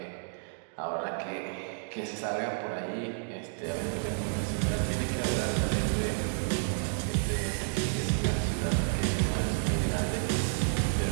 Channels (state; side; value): silent; left; digital silence